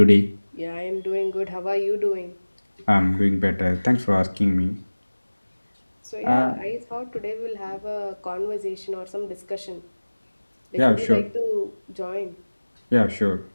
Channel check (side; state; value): both; inverted; correlation -1.00